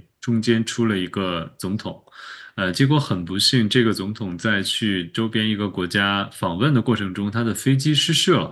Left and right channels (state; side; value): identical; both; correlation 1.00